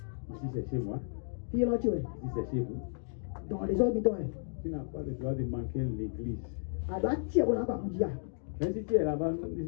Ici, c'est chez moi. Ici, c'est chez vous. Tu n'as pas le droit de manquer l'église. Même si tu es là-bas,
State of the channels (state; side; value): silent; right; digital silence